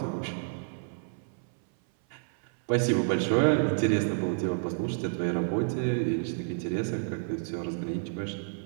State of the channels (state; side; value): silent; left; 58 dB below the other